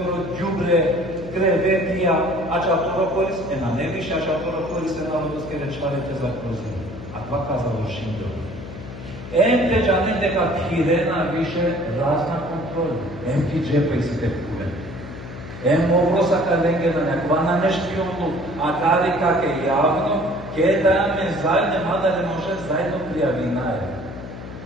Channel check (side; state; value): left; noise; hum, 12 dB below the sound